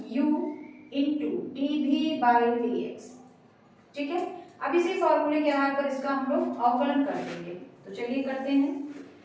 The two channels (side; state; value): both; identical; correlation 1.00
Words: u into dv by dx, ठीक है। अब इसी फॉर्मूले के आधार पर इसका हम लोग अवकलन कर देंगे, तो चलिए करते हैं।